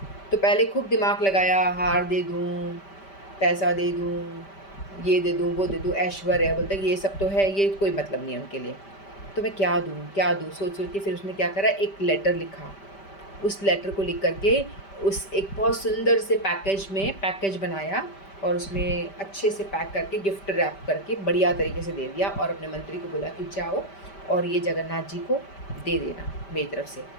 तो पहले खूब दिमाग लगाया, हार दे दूँ, पैसा दे दूँ, ये दे दूँ, वो दे दूँ, ऐश्वर्य, बोलता है कि ये सब तो है, ये कोई मतलब नहीं है उनके लिए। तो मैं क्या दूँ, क्या दूँ? सोच-सोच के फिर उसने क्या करा, एक लेटर लिखा। उस लेटर को लिख कर के उस एक बहुत सुंदर से पैकेज बनाया और उसमें अच्छे से पैक करके गिफ्ट रैप करके बढ़िया तरीके से दे दिया और अपने मंत्री को बोला कि जाओ और ये जगन्नाथ जी को दे देना मेरी तरफ से।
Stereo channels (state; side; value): late; right; 5.1 ms